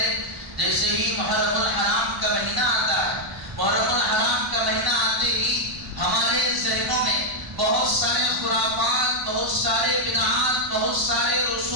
جیسے ہی محرم الحرام کا مہینہ آتا ہے، محرم الحرام کا مہینہ آتے ہی ہمارے ذہنوں میں بہت سارے خرافات، بہت سارے بدعات، بہت سارے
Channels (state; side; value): late; left; 1.0 ms